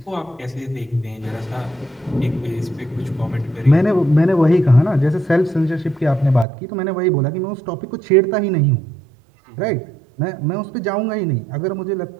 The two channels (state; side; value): drops out; left; at 6.5 s